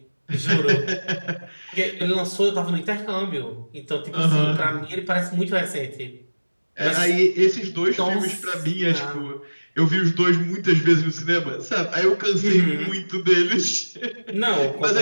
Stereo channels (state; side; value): inverted; both; correlation -1.00